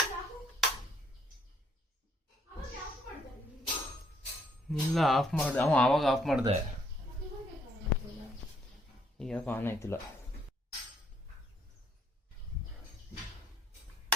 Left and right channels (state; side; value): normal; both; correlation 0.68